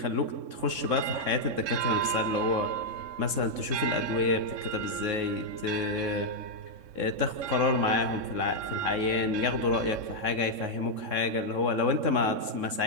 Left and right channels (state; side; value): late; left; 3.6 ms